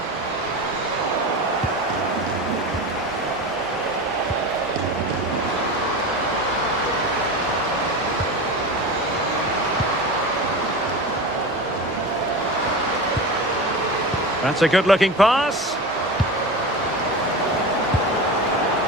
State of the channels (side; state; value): both; normal; correlation 0.27